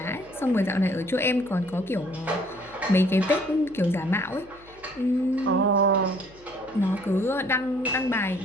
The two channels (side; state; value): left; noise; hum, 25 dB below the sound